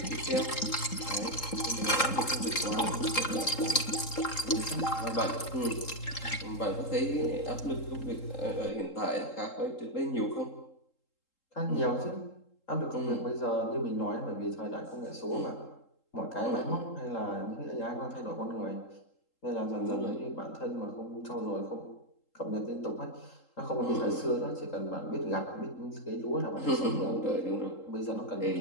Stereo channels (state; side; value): late; right; 3.8 ms